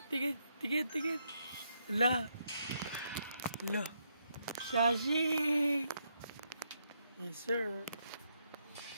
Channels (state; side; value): inverted; both; correlation -0.77